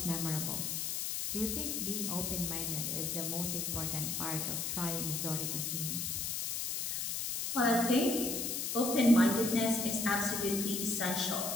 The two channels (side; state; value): left; noise; hiss, 1 dB below the sound